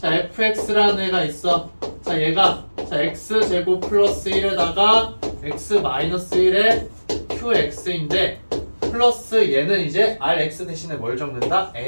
fx라는 애가 있어. 자, 얘가 자, x제곱 플러스 1에다가 x 마이너스 1에 qx인데 플러스 얘는 이제 rx 대신에 뭘 적는다?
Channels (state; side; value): inverted; both; correlation -1.00